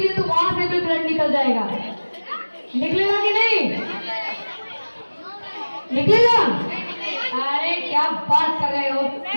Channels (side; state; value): both; inverted; correlation -1.00